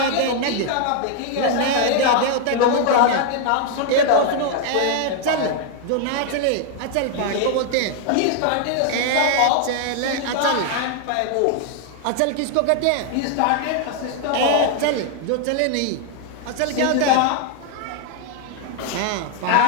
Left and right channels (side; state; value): both; different; correlation 0.00